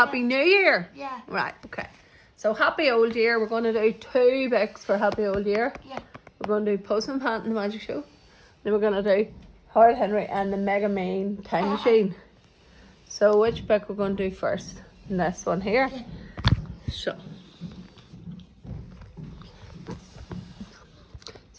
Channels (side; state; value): both; identical; correlation 1.00